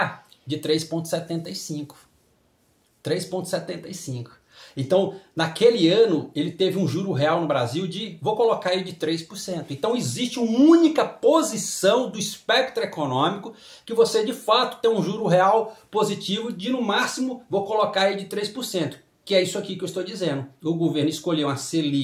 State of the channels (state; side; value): identical; both; correlation 1.00